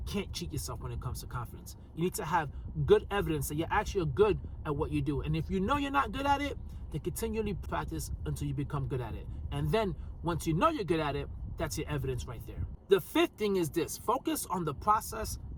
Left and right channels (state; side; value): identical; both; correlation 1.00